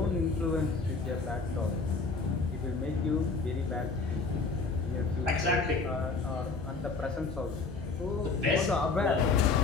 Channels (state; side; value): quieter; right; 4.1 dB